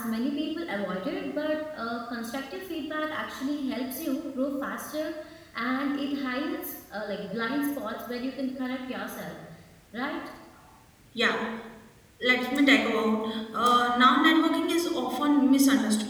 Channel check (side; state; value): both; identical; correlation 1.00